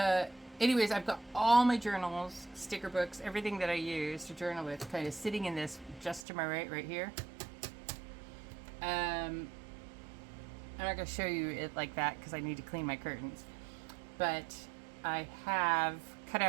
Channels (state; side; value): drops out; left; at 6.2 s